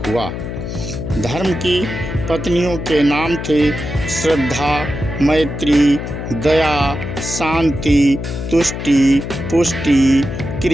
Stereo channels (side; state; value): left; noise; hum, 6 dB below the sound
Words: हुआ। धर्म की पत्नियों के नाम थे श्रद्धा, मैत्री, दया, शांति, तुष्टि, पुष्टि,